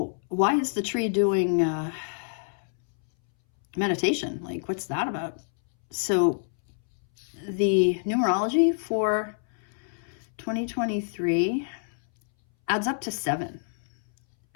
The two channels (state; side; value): silent; right; 60 dB below the other